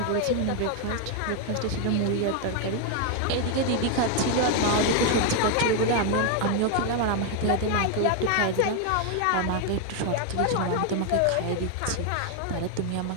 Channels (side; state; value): both; different; correlation 0.01